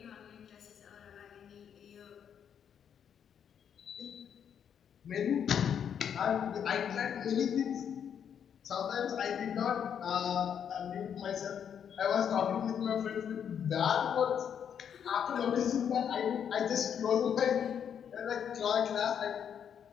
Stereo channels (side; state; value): right; quieter; 8.3 dB